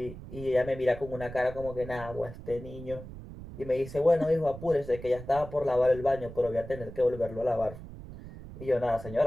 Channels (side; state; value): right; noise; rumble, 13 dB below the sound